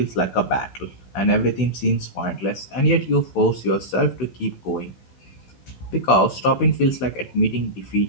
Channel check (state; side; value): late; right; 16 ms